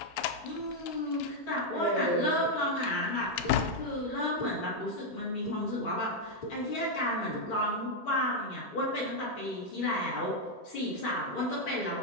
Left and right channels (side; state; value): both; normal; correlation 0.00